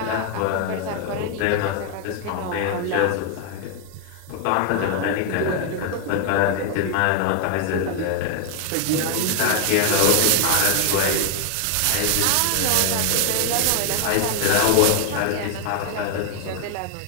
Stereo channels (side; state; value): both; different; correlation 0.00